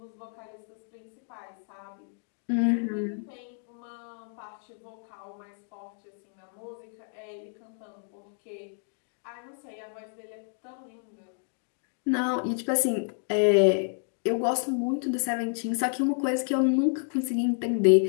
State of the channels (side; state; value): right; silent; 58 dB below the other